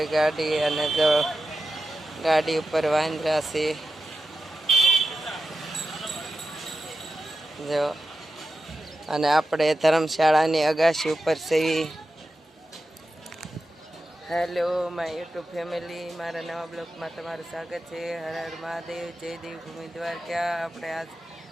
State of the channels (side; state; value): both; normal; correlation 0.91